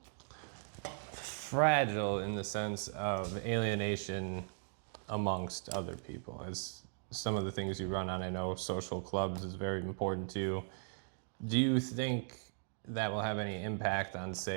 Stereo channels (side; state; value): left; silent; digital silence